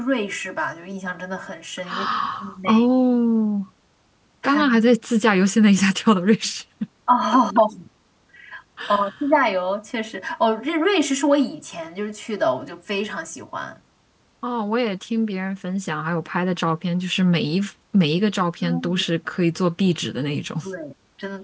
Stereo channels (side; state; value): both; identical; correlation 1.00